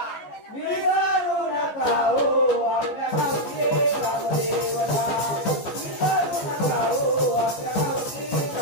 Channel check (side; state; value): right; late; 14 ms